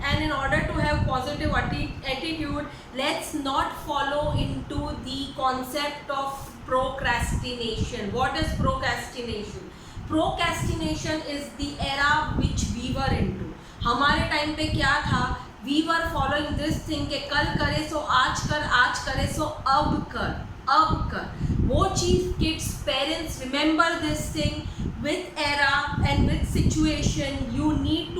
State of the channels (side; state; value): both; identical; correlation 1.00